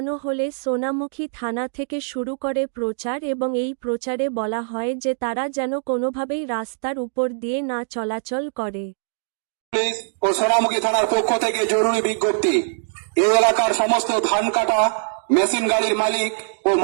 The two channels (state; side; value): silent; left; digital silence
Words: হলে সোনামুখী থানা থেকে শুরু করে প্রচার এবং এই প্রচারে বলা হয় যে তারা যেন কোনোভাবেই রাস্তার উপর দিয়ে না চলাচল করে। পুলিশ ও সোনামুখী থানার পক্ষ থেকে জরুরি বিজ্ঞপ্তি। এই এলাকার সমস্ত ধান কাটা মেশিন গাড়ির মালিক ও